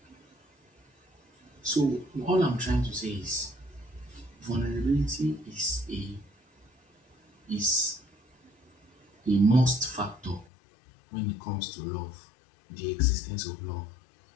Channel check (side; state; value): right; drops out; at 10.5 s